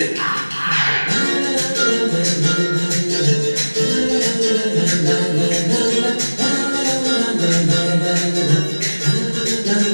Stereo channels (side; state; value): both; inverted; correlation -1.00